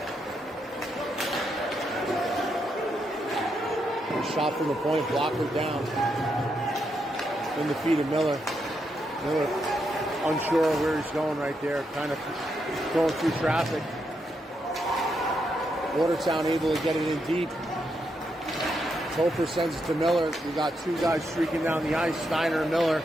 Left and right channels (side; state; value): both; normal; correlation 0.81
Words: Shot from the point, blocker down. In the feet of Miller. Miller unsure of where he's going right there, kind of going through traffic. Watertown able to get it in deep. Topher sends it to Miller. We got two guys streaking down the ice, Steiner and Miller.